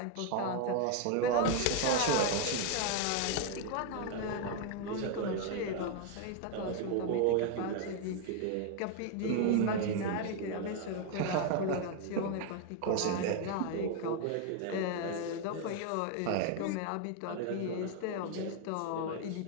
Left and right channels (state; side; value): different; both; correlation 0.01